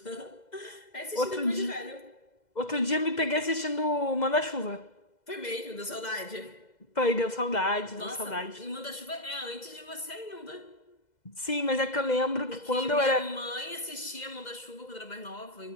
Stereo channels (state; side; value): late; right; 2.0 ms